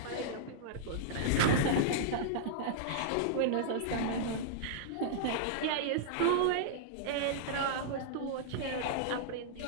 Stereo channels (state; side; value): different; both; correlation -0.02